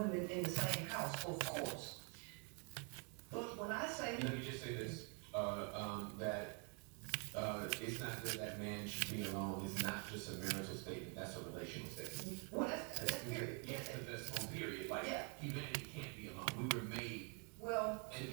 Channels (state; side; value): quieter; left; 37.1 dB